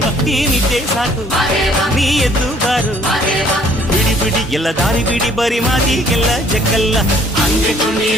ಈ ನಿದ್ದೆ ಸಾಕು ನೀ ಎದ್ದು ಬಾರು, ಬಿಡಿ ಬಿಡಿ ಎಲ್ಲ ದಾರಿ ಬಿಡಿ, ಬರಿ ಮಾತಿಗೆಲ್ಲ ಜಗ್ಗಲ್ಲ. ಹಂಗೆ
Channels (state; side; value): normal; both; correlation 0.60